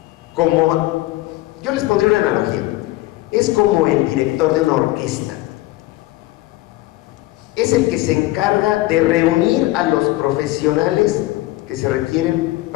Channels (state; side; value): quieter; right; 18.0 dB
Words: como, yo les pondré una analogía, es como el director de una orquesta. Es el que se encarga de reunir a los profesionales que se requieren